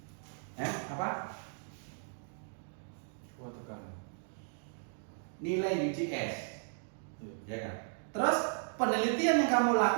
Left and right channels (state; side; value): silent; left; digital silence